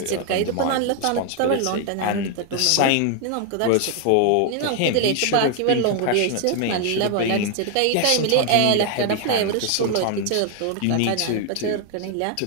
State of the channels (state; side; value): different; both; correlation 0.00